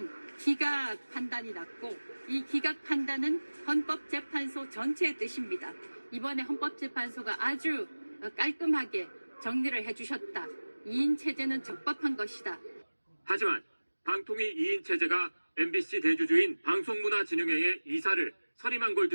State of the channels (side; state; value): both; inverted; correlation -1.00